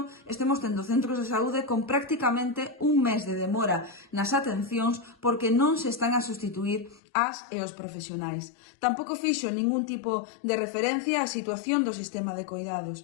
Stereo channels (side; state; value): right; drops out; at 7.0 s